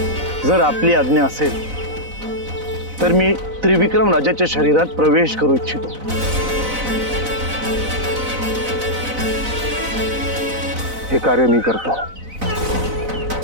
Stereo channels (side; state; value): left; late; 4.0 ms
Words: जर आपली आज्ञा असेल तर मी त्रिविक्रम राजाच्या शरीरात प्रवेश करू इच्छितो। हे कार्य मी करतो।